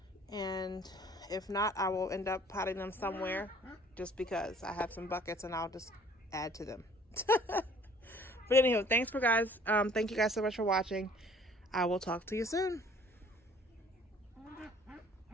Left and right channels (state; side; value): normal; both; correlation 0.54